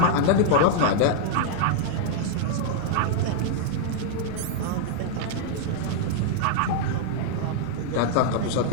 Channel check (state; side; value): different; both; correlation -0.01